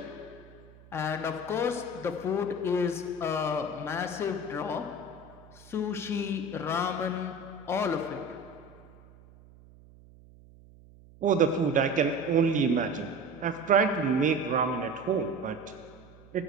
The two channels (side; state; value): right; noise; hum, 23 dB below the sound